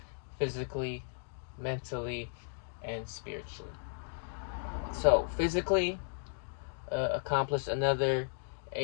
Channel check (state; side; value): silent; right; digital silence